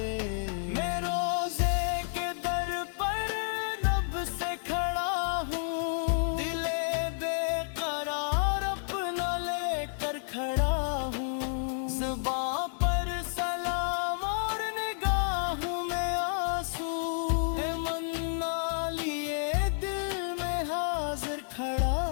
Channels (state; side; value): silent; right; digital silence